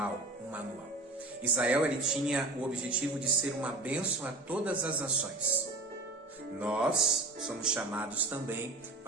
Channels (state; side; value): quieter; left; 3.0 dB